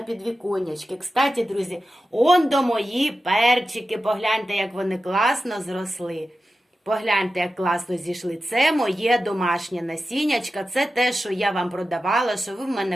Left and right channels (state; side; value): normal; both; correlation 0.92